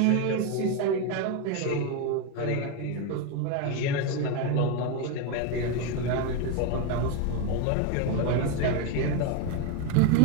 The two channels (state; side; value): different; both; correlation 0.03